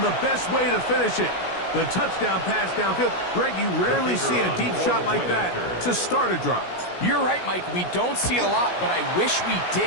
the best way to finish it. The touchdown pass downfield. Greg, you rarely see a deep shot like that to start a drive. You're right, Mike. We don't see it a lot, but I wish we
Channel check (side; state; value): right; late; 16 ms